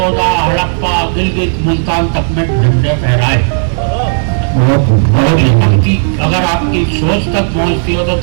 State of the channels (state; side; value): silent; left; digital silence